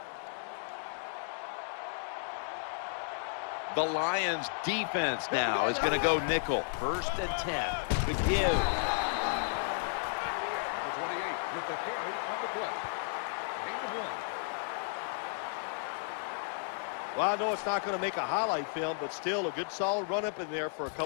The Lions defense now is going to go nickel. 1st and 10. The give. Number 28 with the carry on the play. Gain of 1. Well, I know it's not going to make a highlight film, but still a good solid run up in there for a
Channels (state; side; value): silent; right; digital silence